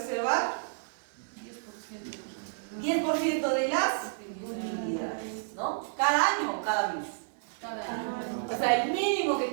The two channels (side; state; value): left; silent; 56 dB below the other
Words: 10% de las ¿no? ¿Cada año o cada mes? Cada año. O sea, el mínimo que